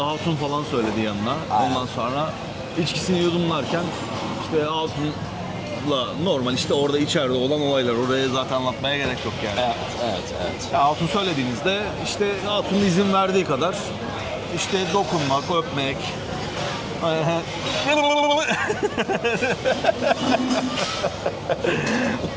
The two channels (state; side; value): identical; both; correlation 1.00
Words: falan söyledi yanına. Aynen. Ondan sonra içkisini yudumlarken işte hatunla normal işte orada içeride olan olaylar. Oraya zaten anlatmaya gerek yok yani. Evet. Ya hatun söylediğinizde işte hatunun izin verdiği kadar işte dokunmak, öpmek.